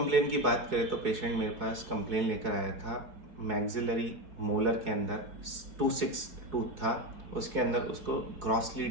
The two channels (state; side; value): late; left; 4.7 ms